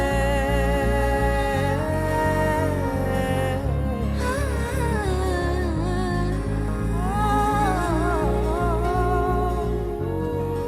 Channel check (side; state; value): both; identical; correlation 1.00